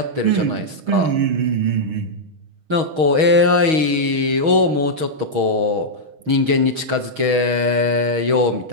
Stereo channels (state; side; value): late; left; 6.3 ms